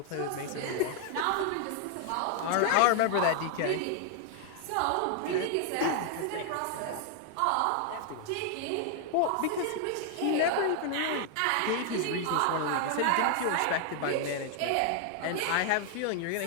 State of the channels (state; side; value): different; both; correlation 0.00